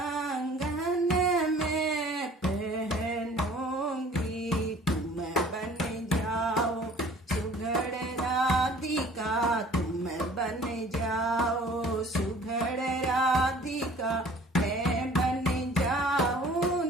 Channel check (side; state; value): both; normal; correlation 0.51